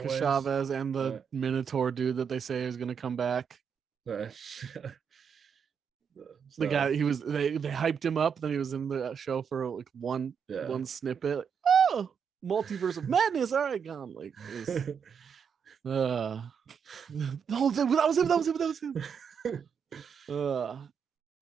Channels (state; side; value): quieter; left; 6.9 dB